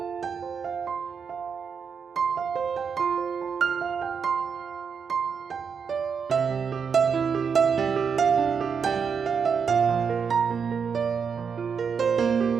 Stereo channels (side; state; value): left; quieter; 6.3 dB